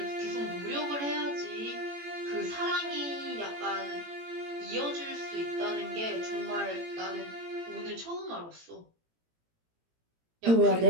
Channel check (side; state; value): left; late; 18 ms